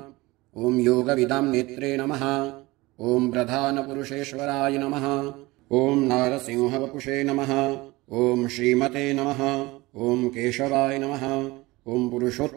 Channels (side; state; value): left; quieter; 21.2 dB